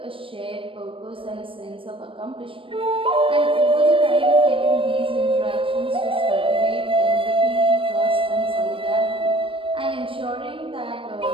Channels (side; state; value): left; late; 0.25 ms